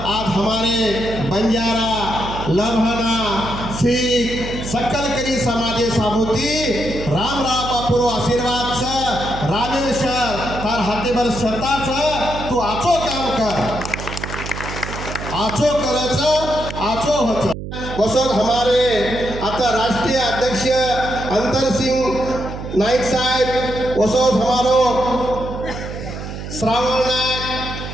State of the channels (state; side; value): noise; right; hum, 8 dB below the sound